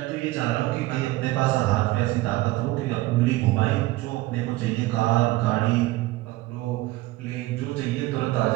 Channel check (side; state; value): left; quieter; 18.5 dB